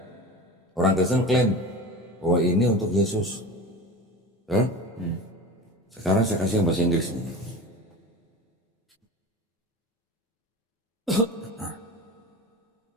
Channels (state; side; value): normal; both; correlation 0.33